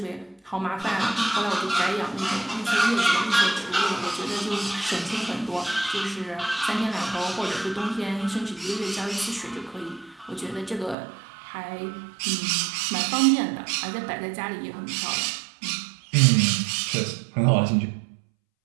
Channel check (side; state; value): left; drops out; at 11.0 s